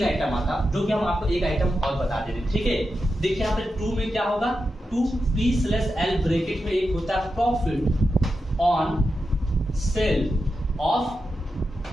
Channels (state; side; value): normal; both; correlation 0.89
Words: आइटम आता, जो कि हम आपको एक आइटम और बता दे रहे हैं। ठीक है, देखिए यहाँ पे 2 में क्या होगा, 2P/L ब्रैकेट में एक होता है प्रॉफिट ऑन सेल ऑफ